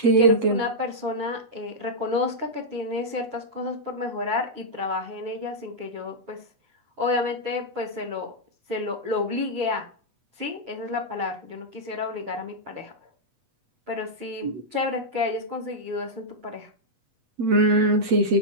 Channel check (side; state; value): left; late; 8.1 ms